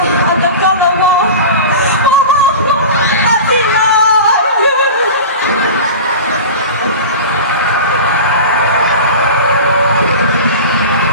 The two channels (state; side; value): inverted; both; correlation -0.31